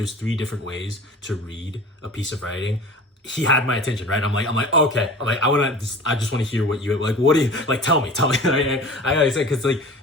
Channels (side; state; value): both; normal; correlation 0.39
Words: 3 different ways to read a piece of writing, he had my attention, right? I'm like, okay, I just want to hear what you like. What do you like? Tell me. I gotta say, because like